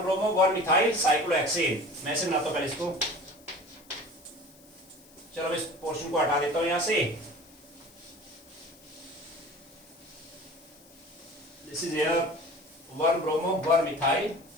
ब्रोमो 1 मिथाइल साइक्लोहेक्सेन। मैं से बनाता हूं पहले इसको, चलो इस पोर्शन को हटा देता हूं यहां से। This is here 1 bromo 1 methyl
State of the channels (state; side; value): noise; left; hiss, 25 dB below the sound